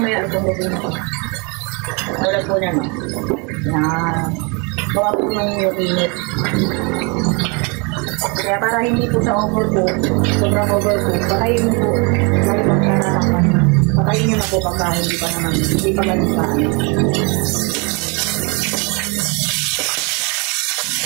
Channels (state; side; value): quieter; left; 31.3 dB